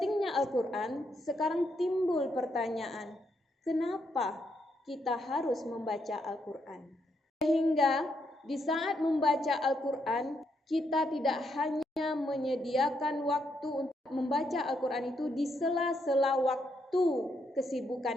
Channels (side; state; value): both; normal; correlation 0.78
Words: Al-Quran, sekarang timbul pertanyaan, kenapa kita harus membaca Al-Quran? Sehingga di saat membaca Al-Quran, kita tidak hanya menyediakan waktu untuk membaca Al-Quran itu di sela-sela waktu